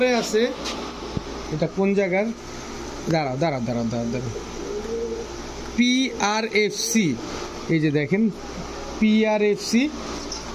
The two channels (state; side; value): identical; both; correlation 1.00